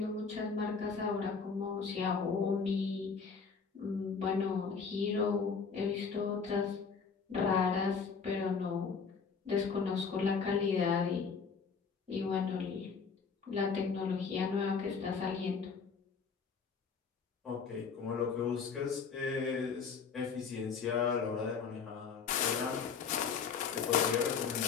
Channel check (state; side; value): quieter; right; 5.6 dB